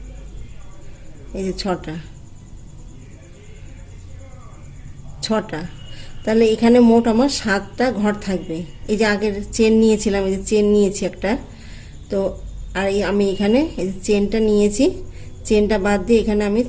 এই যে ছটা, তাহলে এখানে মোট আমার 7টা ঘর থাকবে। এই যে আগের চেন নিয়েছিলাম, এই যে চেন নিয়েছি একটা, তো আর আমি এখানে এই যে চেনটা নিয়েছি, চেনটা বাদ দিয়ে এখানে আমি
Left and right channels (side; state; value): both; identical; correlation 1.00